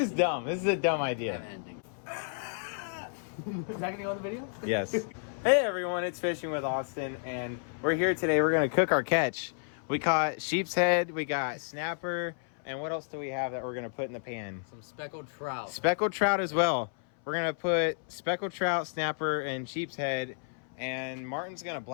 dumb. This is a dumb idea. Ending. Is that gonna go in the video? Yes. Hey everyone, it's Fishing with Austin, and we're here today. We're gonna cook our catch. We caught sheep's head, we got snapper, and what else do we have that we're gonna put in the pan? Some speckled trout. Speckled trout as well. We're gonna put speckled trout, snapper, and sheep's head, and Martin's gonna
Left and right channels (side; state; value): right; silent; 57 dB below the other